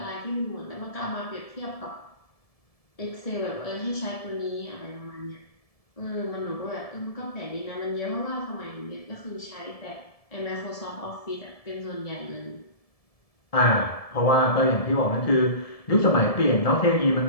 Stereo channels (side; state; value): right; late; 1.7 ms